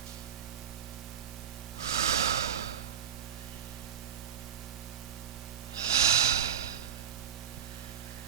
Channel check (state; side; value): quieter; left; 8.9 dB